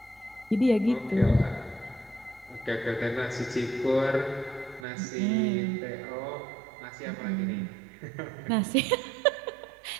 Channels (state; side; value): drops out; left; at 4.9 s